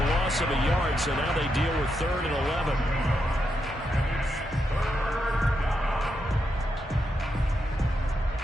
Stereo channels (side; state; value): both; normal; correlation 0.83